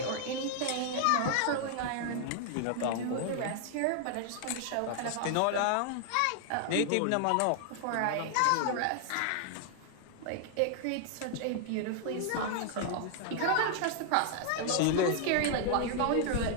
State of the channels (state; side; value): different; both; correlation 0.00